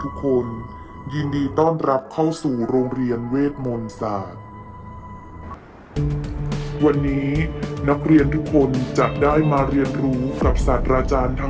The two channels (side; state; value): both; identical; correlation 1.00